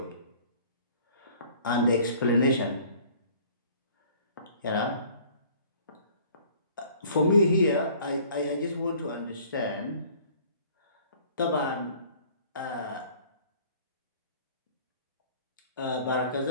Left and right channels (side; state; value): both; inverted; correlation -0.53